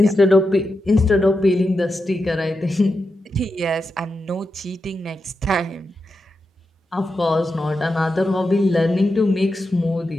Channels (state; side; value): normal; both; correlation 0.88